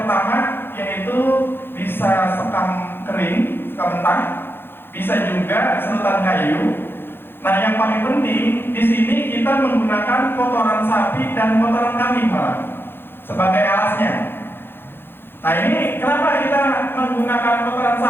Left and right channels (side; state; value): right; late; 0.10 ms